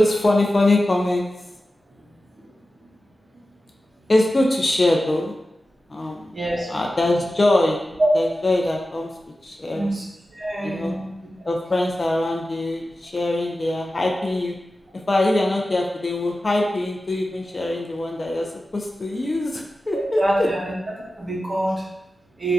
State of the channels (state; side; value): normal; both; correlation 0.94